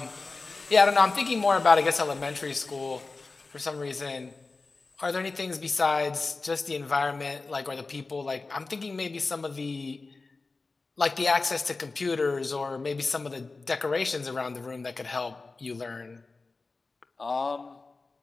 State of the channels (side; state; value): right; quieter; 3.8 dB